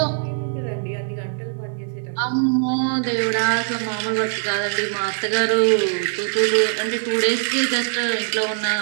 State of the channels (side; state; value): left; silent; digital silence